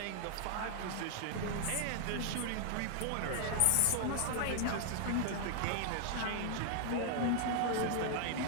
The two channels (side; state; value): both; different; correlation 0.00